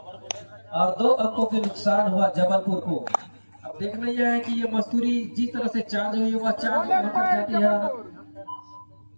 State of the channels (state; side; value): inverted; both; correlation -1.00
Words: और 2 अंकों के नुकसान हुआ जबलपुर को। अब देखना यह है कि ये मस्तूरी जिस तरह से चार्ज हुई वह चार्ज कहां पर जाती है।